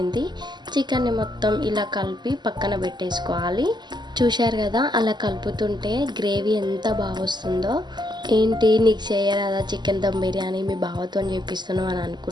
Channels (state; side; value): late; left; 0.21 ms